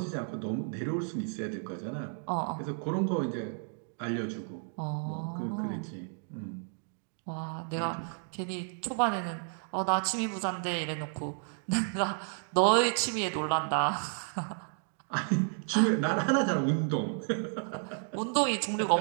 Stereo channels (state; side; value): silent; left; 56 dB below the other